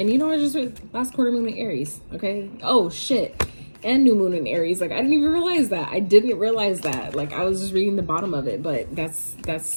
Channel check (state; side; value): inverted; both; correlation -1.00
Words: you know, I just read last quarter moon in Aries. Okay. Oh shit. And new moon in Aries. Like I didn't even realize that. I didn't realize that. Like I was just reading the bottom of it, but